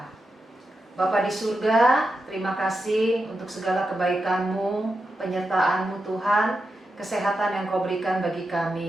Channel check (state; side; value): normal; both; correlation 0.88